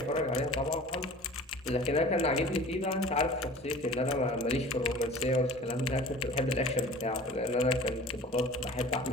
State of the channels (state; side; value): normal; both; correlation 0.43